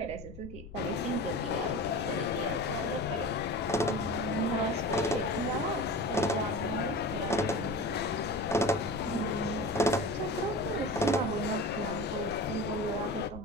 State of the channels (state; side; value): noise; left; rumble, 13 dB below the sound